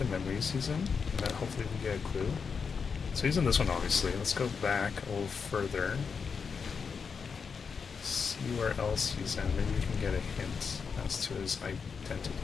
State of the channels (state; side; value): quieter; right; 5.8 dB